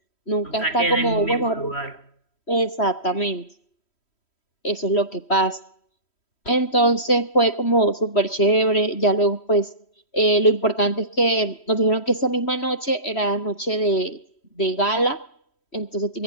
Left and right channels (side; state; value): right; late; 3.1 ms